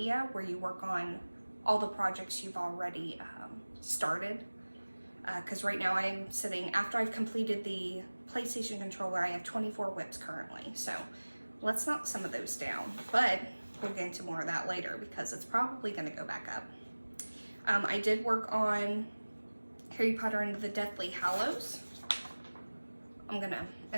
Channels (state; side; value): inverted; both; correlation -1.00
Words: where you work on all the projects you've already started. Because right now I'm sitting, after I've completed the PlayStation controller, I have 24 whips currently. So let's knock some of those down. But we'll get into more of that later because it's probably going to go back up. I did work on Harry Potter and the Deathly Hallows. I'm going to